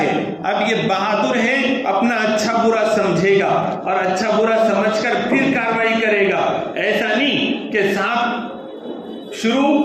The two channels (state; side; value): identical; both; correlation 1.00